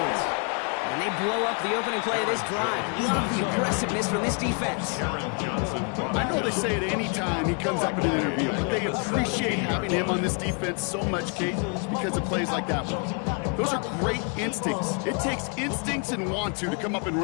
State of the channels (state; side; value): quieter; right; 37.4 dB